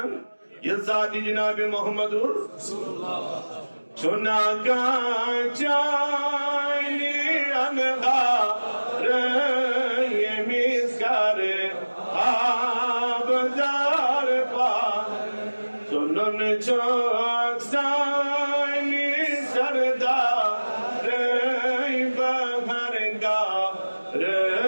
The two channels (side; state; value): both; inverted; correlation -1.00